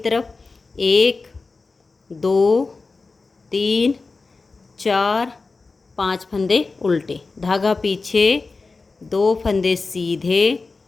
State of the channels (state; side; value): quieter; right; 4.0 dB